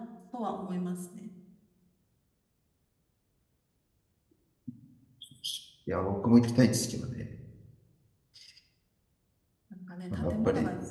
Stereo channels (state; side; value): identical; both; correlation 1.00